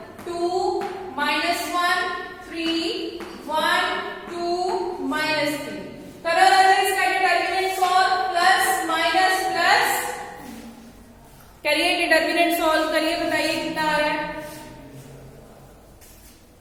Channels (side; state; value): both; identical; correlation 1.00